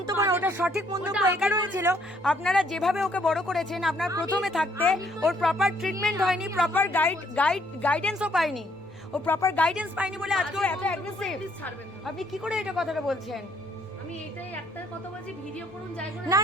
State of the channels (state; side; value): normal; both; correlation 0.67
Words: না, ওটা সঠিক মন্তব্য ওটা এই কারণে ছিল, আপনারা যেভাবে ওকে বড় করেছেন, আপনার প্রথমে থাকতে ওর প্রপার ট্রিটমেন্ট হয়নি, প্রপার গাইডেন্সও পায়নি, ও প্রপার গাইডেন্স পায়নি বলে আজকে ও এত অ্যাগ্রেসিভ। প্লিজ ছাড়বেন না। আপনি কি করে এটা কথাটা বলছেন? আমি এটাই একটা কথা বলছি, ভিডিও করুন যাই করুন। না